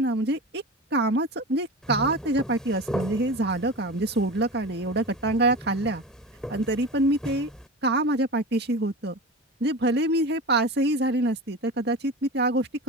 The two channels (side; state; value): both; normal; correlation 0.29